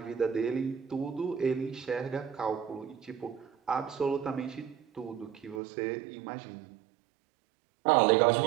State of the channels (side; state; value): left; drops out; at 5.6 s